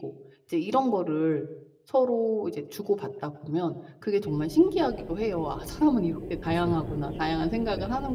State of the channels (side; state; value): both; identical; correlation 1.00